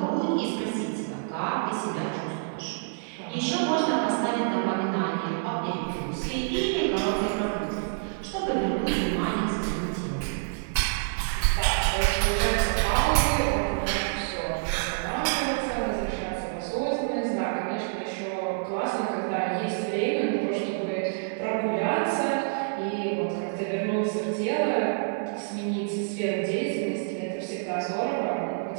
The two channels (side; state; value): left; silent; digital silence